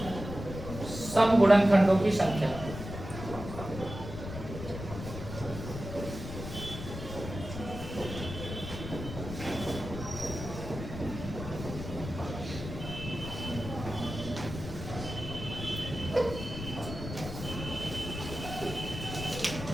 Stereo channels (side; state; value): left; noise; rumble, 8 dB below the sound